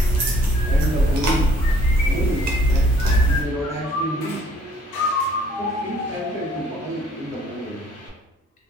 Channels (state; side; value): normal; both; correlation 0.60